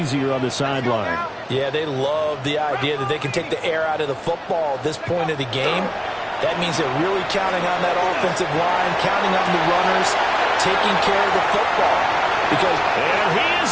on the sideline. Yeah, they love the idea that they can take the air out of the football at this point of the game. That means they're really counting on that offensive line, counting on the runners, taking care of the football. Because and he is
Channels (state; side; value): identical; both; correlation 1.00